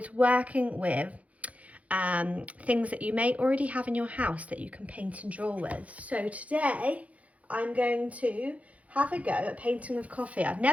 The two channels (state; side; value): late; left; 0.067 ms